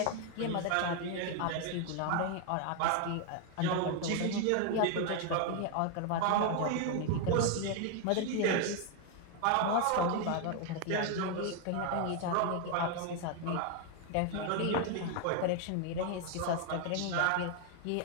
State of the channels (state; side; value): different; both; correlation 0.00